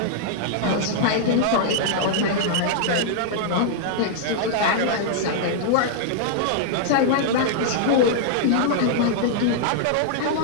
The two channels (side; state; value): both; different; correlation -0.01